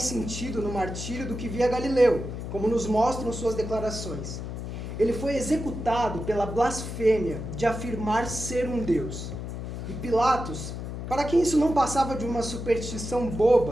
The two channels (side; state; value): left; noise; hum, 7 dB below the sound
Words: sentido no martírio do que via Galileu, como nos mostram suas declarações. Ele foi executado pela blasfêmia de afirmar ser um Deus. E Pilatos, para quem isso não passava de uma superstição